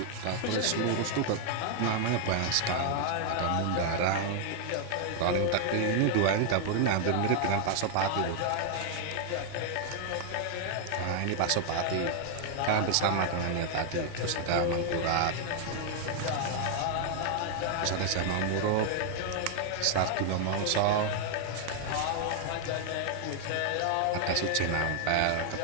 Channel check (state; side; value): different; both; correlation 0.00